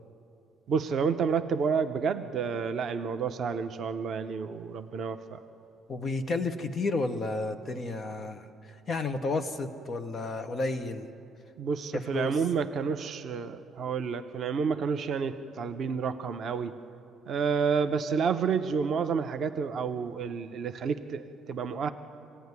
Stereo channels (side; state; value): left; quieter; 3.7 dB